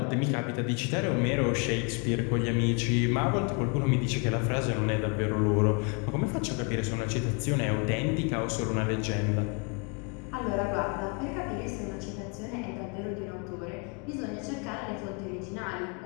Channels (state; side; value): quieter; right; 34.2 dB